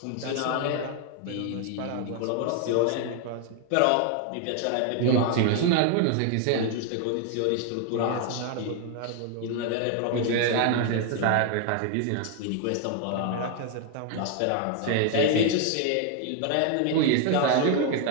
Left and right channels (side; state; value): both; different; correlation 0.00